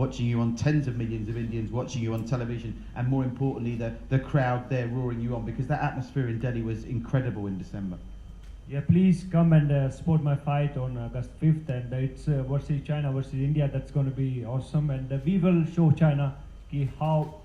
you on, tens of millions of Indians watching you on television, and more importantly, the crowd there roaring you on, because that atmosphere in Delhi was incredible in December. Yeah, please come and support my fight on August 5th, and it's versus China versus India. That's going to be awesome, and we will show China how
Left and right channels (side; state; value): both; identical; correlation 1.00